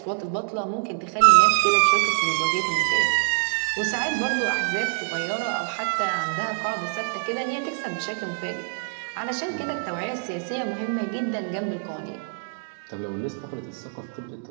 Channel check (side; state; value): left; silent; 61 dB below the other